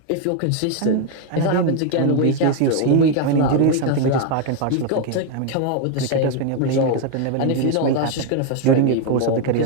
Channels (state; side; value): different; both; correlation 0.01